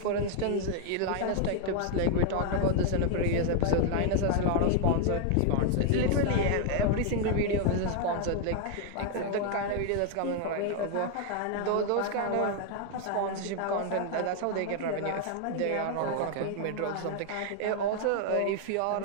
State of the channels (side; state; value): both; different; correlation 0.00